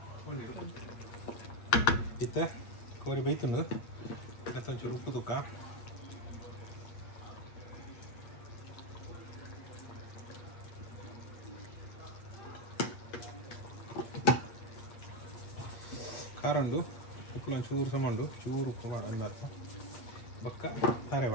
ಇತ್ತ ಕೋರಿ ಬೈತುಂಡು ಮತ್ತು ಒಂಚೂರು ಉಪ್ಪು ತುಕ್ಕ ಕಾರಂಡು ಉಪ್ಪು ಚೂರು ಸಮಾಂಡು ಚೂರು ಉಪ್ಪು ಮಾಡು ಅಂದರ್ಥ ಬಕ್ಕ ತಾರೆ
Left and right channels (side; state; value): right; late; 8.5 ms